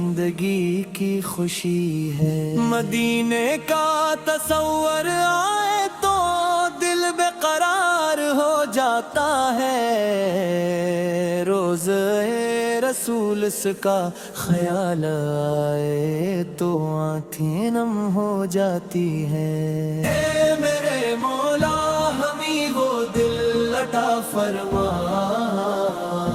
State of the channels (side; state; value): both; identical; correlation 1.00